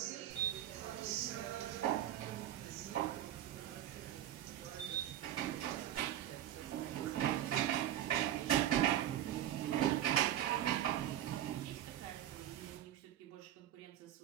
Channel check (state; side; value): quieter; left; 11.9 dB